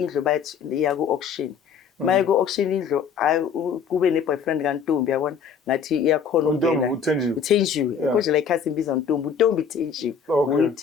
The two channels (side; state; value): right; quieter; 6.6 dB